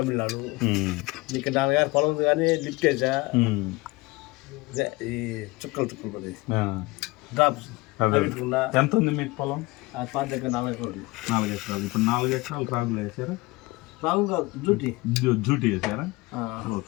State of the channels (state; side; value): quieter; right; 22.5 dB